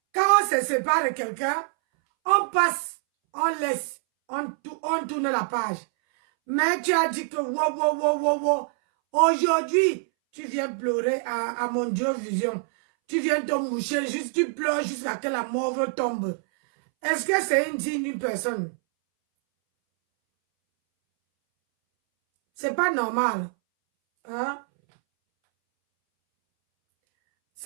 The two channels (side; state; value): left; silent; 62 dB below the other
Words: Quand on se sépare de quelqu'un, on passe, on laisse, on tourne la page. Mais tu as dit que wow. Aujourd'hui, tu viens pleurer à mon Dieu vision. Tu viens te moucher, juste tu pleures jusqu'à ce que la mort tombe. Est-ce que c'est une digne personne? C'est pas normal. Hein?